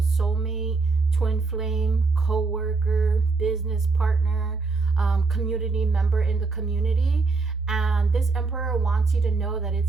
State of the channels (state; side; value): quieter; left; 4.1 dB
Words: soulmate, twin flame, co-worker, business partner, community member in the community. And this emperor wants you to know that